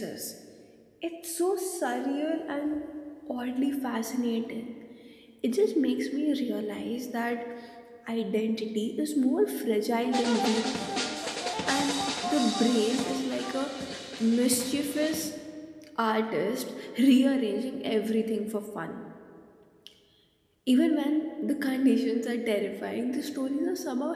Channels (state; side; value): identical; both; correlation 1.00